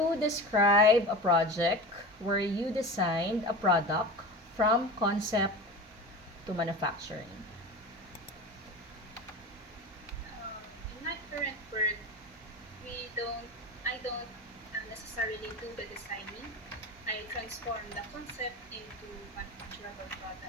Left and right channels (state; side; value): normal; both; correlation 0.30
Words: describe a project where you designed a product from concept to manufacturing? In my current work, we don't, I don't necessarily do the designing. I transform the concept into manufacturable